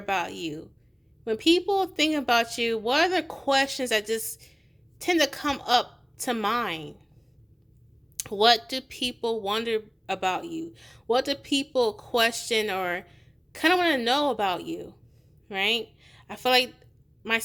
you? When people think about you, what are the questions that just tend to come up to mind? What do people wonder about you? What do people question or kind of want to know about you? Right? I feel like my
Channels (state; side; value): identical; both; correlation 1.00